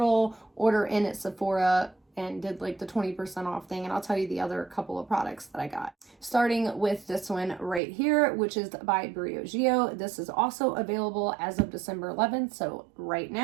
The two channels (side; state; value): left; drops out; at 7.8 s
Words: order in at Sephora and did like the 20% off thing, and I'll tell you the other couple of products that I got. Starting with this one right here, which is by Briogeo. This is also available as of December 11th, so right